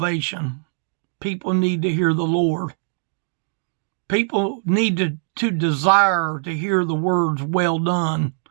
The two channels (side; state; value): left; silent; digital silence